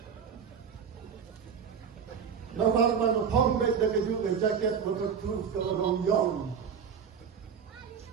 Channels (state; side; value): quieter; left; 7.0 dB